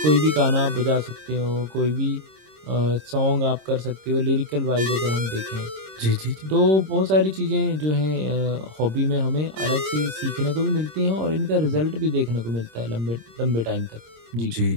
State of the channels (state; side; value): late; left; 26 ms